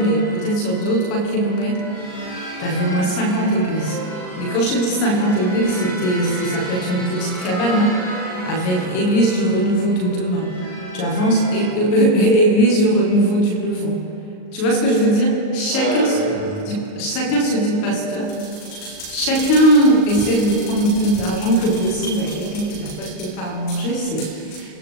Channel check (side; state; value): right; late; 38 ms